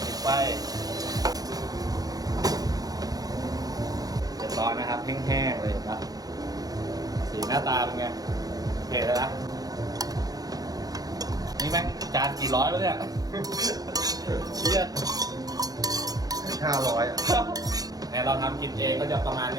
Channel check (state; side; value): late; left; 0.18 ms